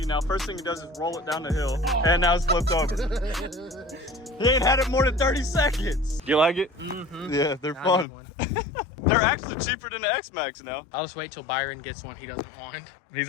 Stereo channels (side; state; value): right; drops out; at 8.1 s